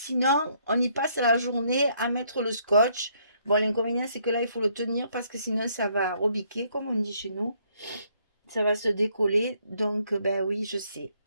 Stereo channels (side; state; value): both; inverted; correlation -0.69